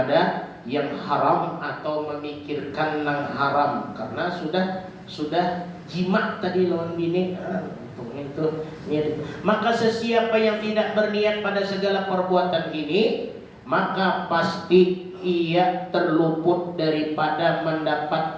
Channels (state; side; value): identical; both; correlation 1.00